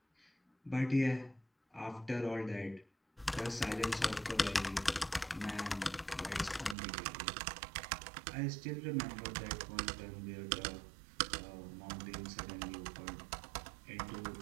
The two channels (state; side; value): drops out; left; at 6.8 s